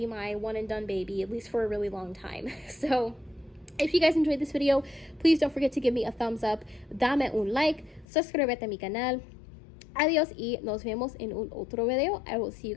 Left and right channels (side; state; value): right; drops out; at 8.1 s